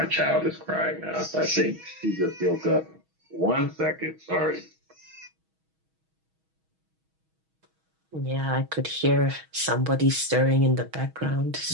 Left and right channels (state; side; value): late; left; 6.2 ms